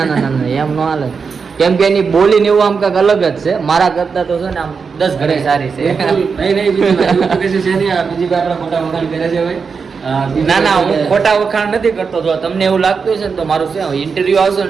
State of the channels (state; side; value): quieter; left; 5.5 dB